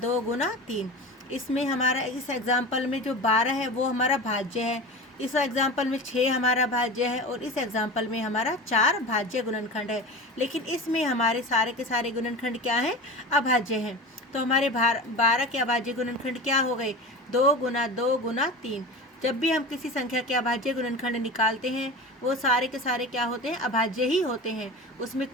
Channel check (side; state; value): both; normal; correlation 0.31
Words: गुना 3। इसमें हमारा इस एग्जाम्पल में जो 12 है वो हमारा भाज्य है, इस एग्जाम्पल में 6 हमारा भाज्य है और इस एग्जाम्पल में हमारा 4 भाज्य गुणनखंड है। लेकिन इसमें हमारे सारे के सारे गुणनखंड क्या हैं? अभाज्य हैं। तो हमारे 12 के अभाज्य गुणनखंड क्या हो गए? 2 गुना 2 गुना 3। जब भी हम किसी संख्या के अभाज्य गुणनखंड निकालते हैं वो सारे के सारे क्या होते हैं? अभाज्य ही होते हैं, उसमें